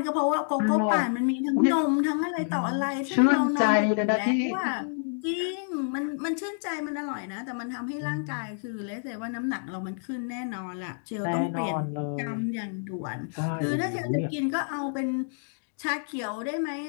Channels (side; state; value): right; silent; digital silence